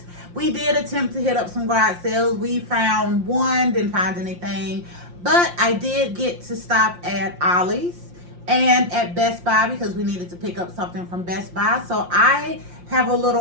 We did attempt to hit up some garage sales. We found one, didn't find anything, but I did get to stop at Ollie's and at Best Buy because we needed to pick up something from Best Buy. So I have a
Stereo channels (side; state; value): left; late; 5.7 ms